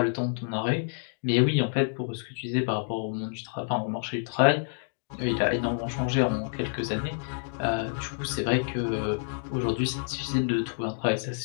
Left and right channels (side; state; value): right; silent; digital silence